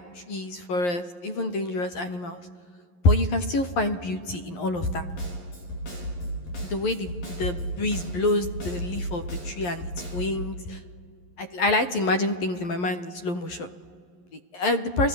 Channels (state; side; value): late; right; 11 ms